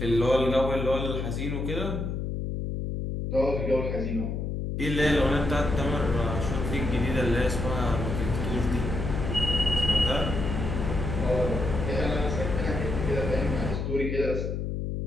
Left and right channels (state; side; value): noise; left; hum, 3 dB below the sound